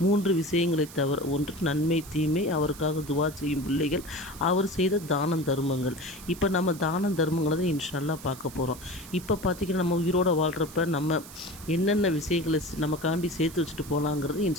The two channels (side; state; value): right; noise; hiss, 17 dB below the sound